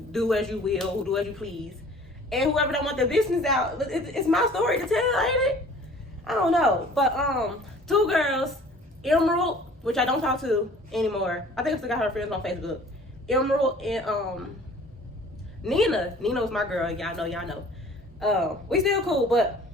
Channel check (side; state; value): both; normal; correlation 0.49